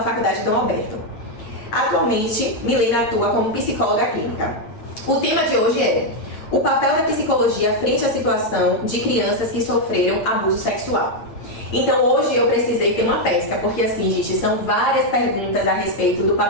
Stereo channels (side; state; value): right; late; 8.9 ms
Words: Faculdade Dom Alberto. Atualmente, Milena atua como psicóloga clínica. O tema de hoje é o papel da psicologia frente à situação de crianças que sofreram abuso sexual. Então hoje eu precisei ter uma pesca, porque assim, gente, são várias perguntas a respeito do